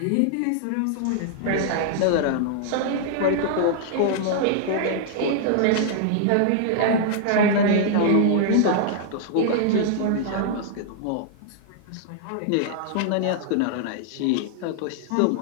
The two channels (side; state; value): both; different; correlation -0.01